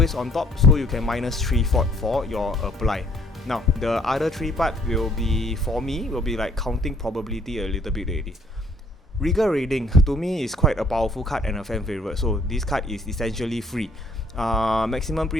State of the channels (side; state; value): both; normal; correlation 0.63